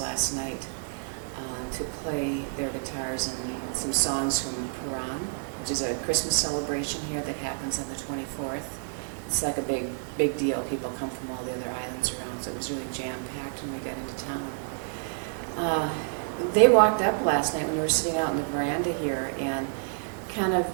night to play their guitars and some songs from Puran, which is a Christmas celebration here that happens on the 24th. It's like a big deal. People come from all the other islands around, so it was really jam-packed when we got into town. They walked up last night when we were sitting out in the veranda here and kind of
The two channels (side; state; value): left; silent; digital silence